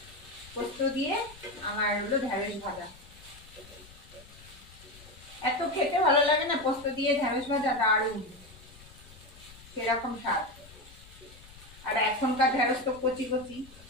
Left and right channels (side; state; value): left; noise; rumble, 21 dB below the sound